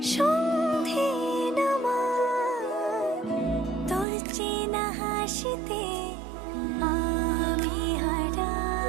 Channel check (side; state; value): left; drops out; at 4.0 s